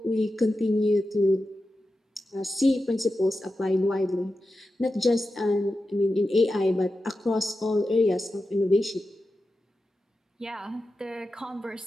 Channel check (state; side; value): normal; both; correlation 0.91